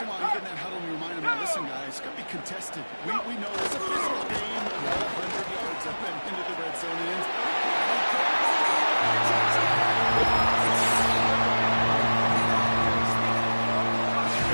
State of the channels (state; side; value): inverted; both; correlation -1.00